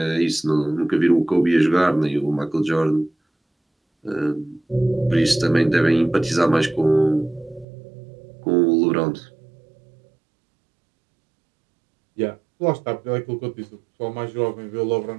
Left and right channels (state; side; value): drops out; left; at 7.7 s